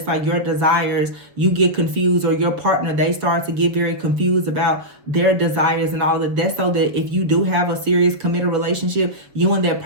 like your desires, you get confused, or your partner, they start to get very confused about their desires and all of that. That's so that if you do have a serious committed relationship, you and that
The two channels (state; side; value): late; left; 6.9 ms